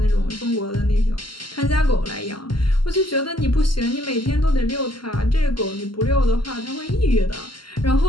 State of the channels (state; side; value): late; right; 0.72 ms